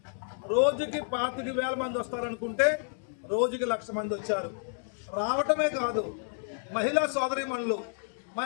రోజుకి 25,000 మంది వస్తారనుకుంటే రోజుకి 1,00,000 మంది వచ్చారు. రావటమే కాదు, మహిళా సోదరీమణులు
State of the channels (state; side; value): silent; right; digital silence